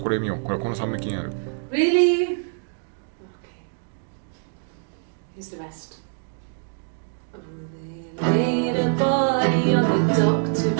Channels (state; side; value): silent; left; digital silence